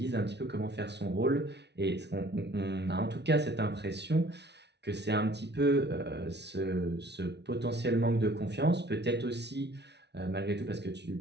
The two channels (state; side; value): late; left; 0.50 ms